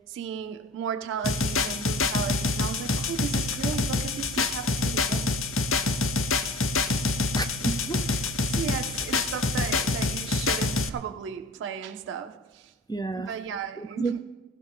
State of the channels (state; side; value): normal; both; correlation 0.43